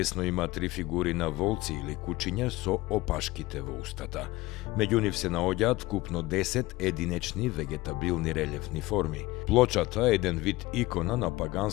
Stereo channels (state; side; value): quieter; right; 19.5 dB